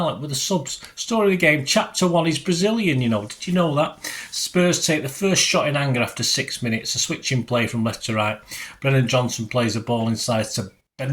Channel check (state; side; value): identical; both; correlation 1.00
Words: with the subs. Story of the game, Chapter 1 is Brazilian, Did you know that? Spurs take the first shot in anger after 6 minutes. A switching play from left to right. Brennan Johnson plays the ball inside to